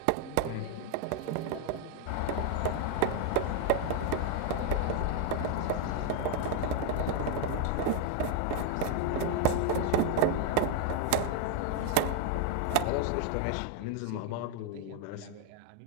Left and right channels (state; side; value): different; both; correlation 0.00